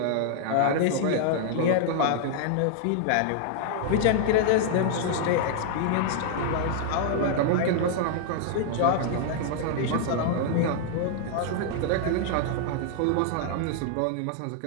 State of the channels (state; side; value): different; both; correlation -0.01